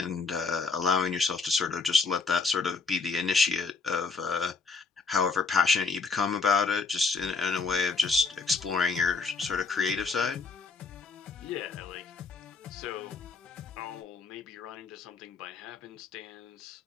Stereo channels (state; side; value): quieter; right; 4.5 dB